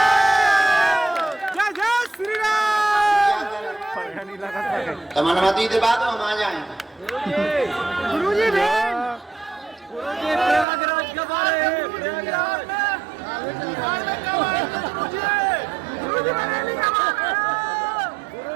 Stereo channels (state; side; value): drops out; left; at 10.7 s